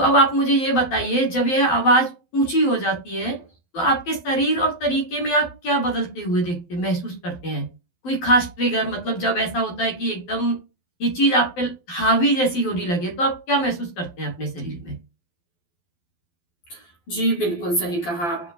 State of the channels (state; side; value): late; right; 12 ms